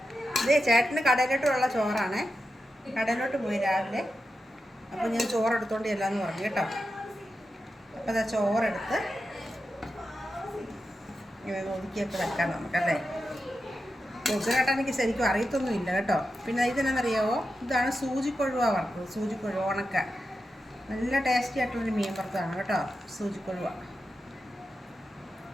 ഇതേ ചേട്ടന് കടയിലോട്ടുള്ള ചോറാണ്. കടയിലോട്ട് പോയി രാവിലെ. അപ്പോൾ ഞാൻ ചോറെടുത്തോണ്ട് ചെല്ലാന്ന് പറഞ്ഞു കേട്ടോ. അപ്പോൾ അതാ ചോറെടുത്ത് ഇങ്ങനെ ഒതുക്കിയൊക്കെ വെക്കാം നമുക്കല്ലേ. പൊതിച്ചോറേട്ടാ എനിക്ക് ശരിക്കും അറിയത്തൊന്നുമില്ല കേട്ടോ. പിന്നെ ഇതെന്നറിയാവോ, ഇതാണ് സൂചിക്കൊഴുവ വറുത്തത്. സൂചിക്കൊഴുവ ഉണക്ക നല്ല ടേസ്റ്റി ആയിട്ടുള്ളൊരു മീൻ വറുത്തതാണ് കേട്ടോ, സൂചിക്കൊഴുവ.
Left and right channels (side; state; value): both; normal; correlation 0.89